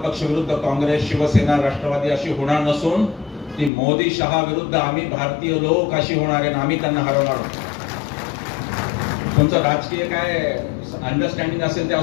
विरुद्ध काँग्रेस, शिवसेना, राष्ट्रवादी अशी होणार नसून ती मोदी शहा विरुद्ध आम्ही भारतीय लोक अशी होणार आहे. आम्ही त्यांना हरवणार आहोत. तुमचं राजकीय काय अंडरस्टँडिंग असेल ते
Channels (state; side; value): drops out; right; at 3.7 s